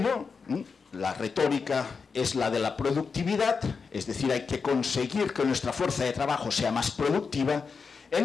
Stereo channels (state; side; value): quieter; right; 5.2 dB